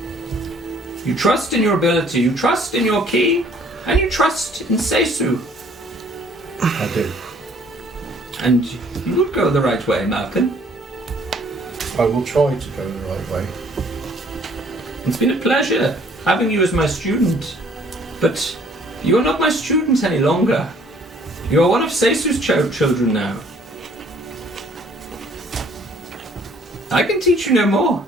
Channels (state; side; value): normal; both; correlation 0.59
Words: You trust in your ability, you trust in your ki, and you trust in Seisu. I do. And you will go the right way, Malcolm. I will try to go the right way. It's been a pleasure having you as my student. But you are not my student any longer. You are one of Seisu's children now. I can teach you no more.